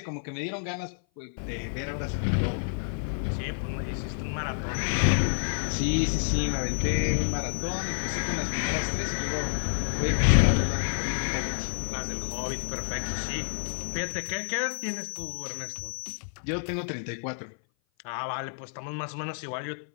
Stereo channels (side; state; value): right; silent; 56 dB below the other